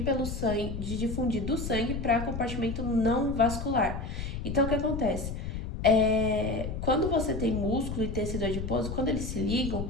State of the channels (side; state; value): left; noise; rumble, 5 dB below the sound